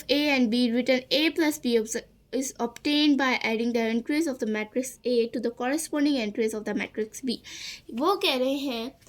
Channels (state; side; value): identical; both; correlation 1.00